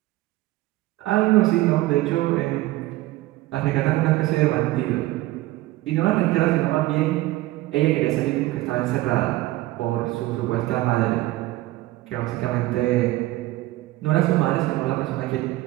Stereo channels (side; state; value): left; quieter; 17.7 dB